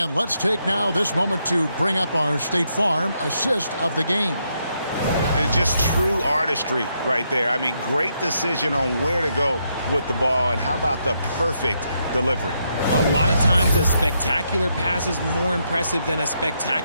let's take now this moment to bring up our State Farm assist of the game. It's just true artistry right there. I mean, great decision on where to go with the ball, and how about the perfect delivery? A lot of times a spectacular pass is more impressive than a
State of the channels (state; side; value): inverted; both; correlation -0.78